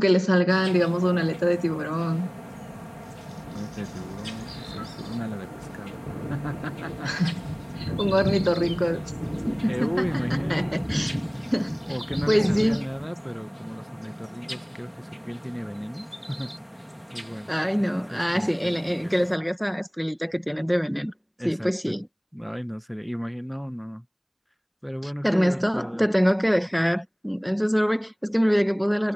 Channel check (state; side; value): identical; both; correlation 1.00